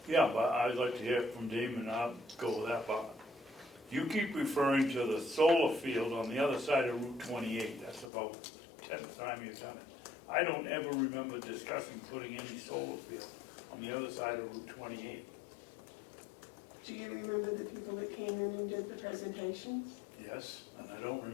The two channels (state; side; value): drops out; right; at 8.1 s